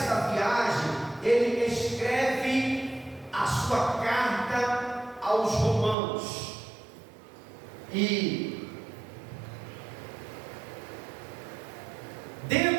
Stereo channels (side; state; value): left; drops out; at 6.0 s